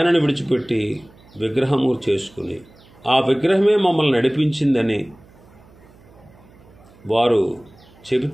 విడిచిపెట్టి విగ్రహము చేసుకుని ఆ విగ్రహమే మమ్మల్ని నడిపించిందని వారు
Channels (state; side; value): noise; right; hum, 26 dB below the sound